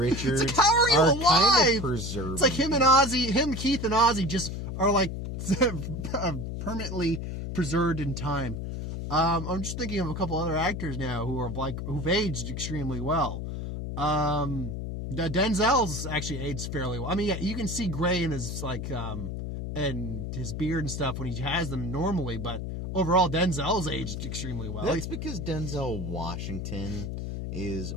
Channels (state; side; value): noise; left; hum, 5 dB below the sound